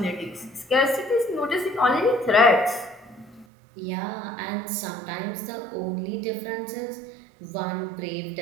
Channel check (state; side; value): drops out; left; at 3.5 s